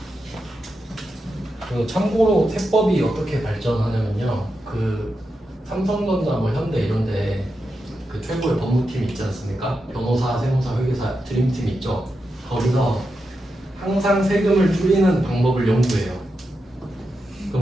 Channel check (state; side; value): normal; both; correlation 0.87